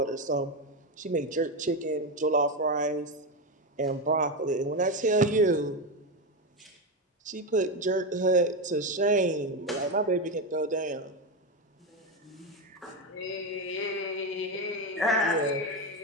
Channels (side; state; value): both; normal; correlation 0.12